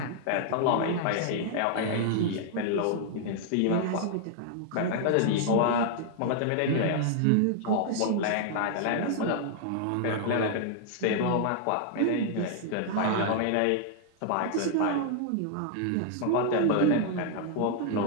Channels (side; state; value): both; different; correlation -0.01